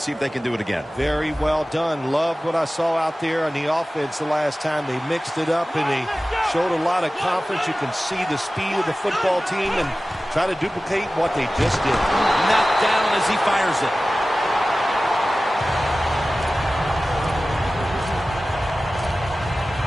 see if they can do it again. Very well done. Loved what I saw out there on the offense the last time. They mixed it up, and they showed a lot of confidence. You can see the speed of the football team and try to duplicate what they just did. Knocked down as he fires it.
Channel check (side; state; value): both; normal; correlation 0.96